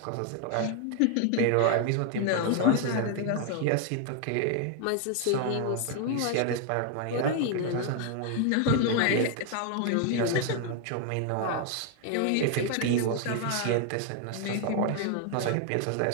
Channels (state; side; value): different; both; correlation 0.00